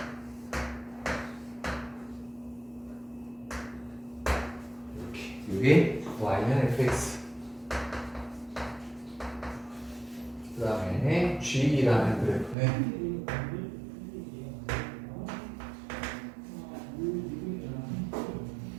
이게 Y는 fx 그 다음에 G라는 그래프는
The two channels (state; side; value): drops out; left; at 12.6 s